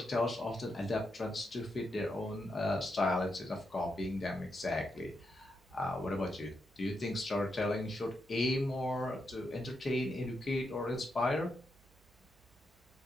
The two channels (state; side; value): normal; both; correlation 0.83